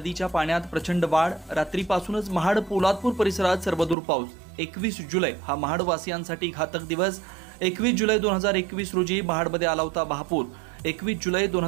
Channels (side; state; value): left; drops out; at 4.0 s